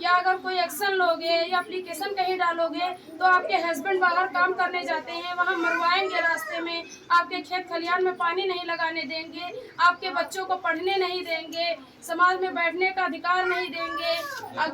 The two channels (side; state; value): both; identical; correlation 1.00